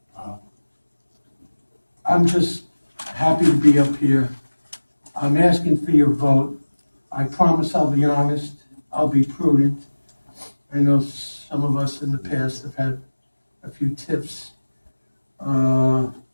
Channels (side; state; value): both; inverted; correlation -1.00